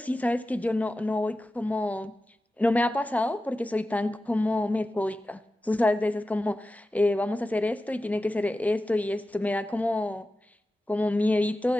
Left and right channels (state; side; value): normal; both; correlation 0.94